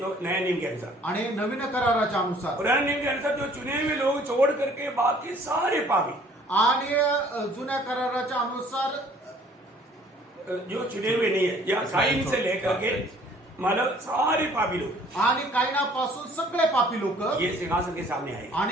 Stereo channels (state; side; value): normal; both; correlation 0.56